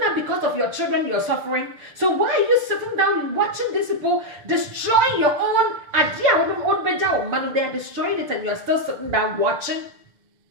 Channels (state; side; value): late; left; 6.6 ms